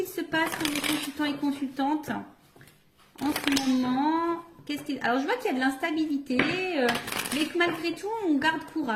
se passe pour les consultants et consultantes en ce moment? Alors, je vois qu'il y a de l'instabilité, mais que malgré tout, on garde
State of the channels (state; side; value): identical; both; correlation 1.00